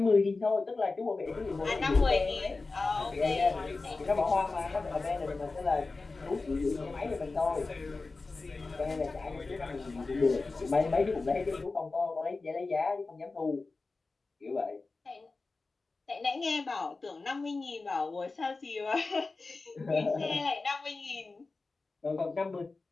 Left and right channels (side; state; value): right; quieter; 3.7 dB